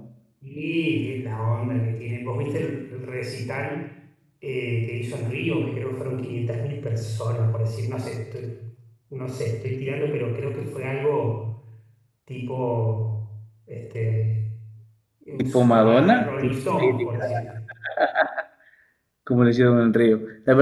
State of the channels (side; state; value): both; identical; correlation 1.00